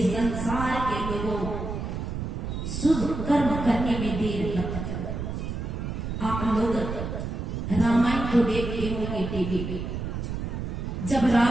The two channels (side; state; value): right; noise; rumble, 4 dB below the sound